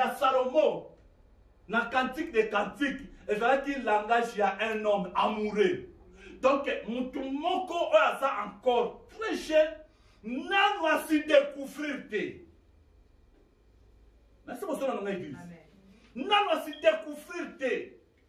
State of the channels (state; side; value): identical; both; correlation 1.00